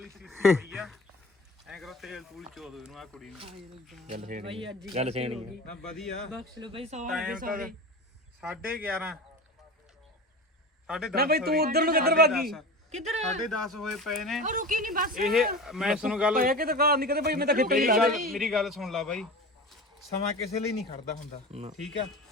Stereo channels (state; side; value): normal; both; correlation 0.31